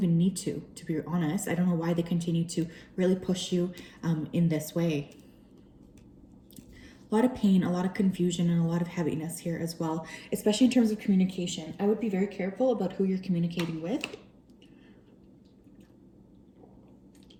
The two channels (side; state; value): both; identical; correlation 1.00